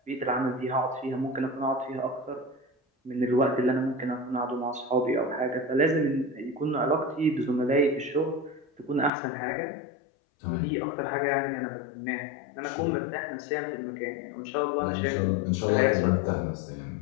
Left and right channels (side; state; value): right; drops out; at 9.1 s